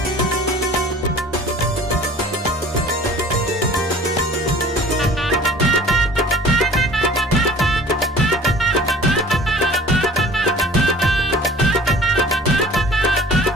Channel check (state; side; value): normal; both; correlation 0.46